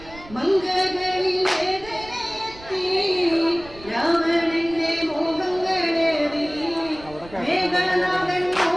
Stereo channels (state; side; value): noise; right; rumble, 19 dB below the sound